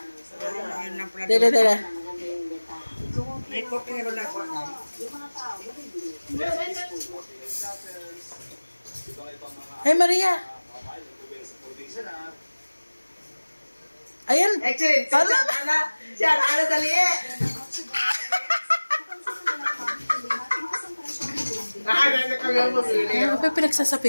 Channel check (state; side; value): inverted; both; correlation -1.00